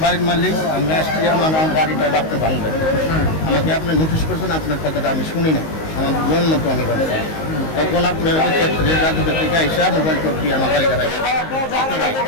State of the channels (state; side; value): late; right; 19 ms